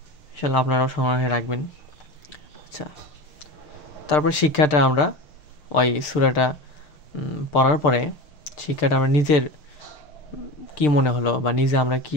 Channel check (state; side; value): late; right; 6.7 ms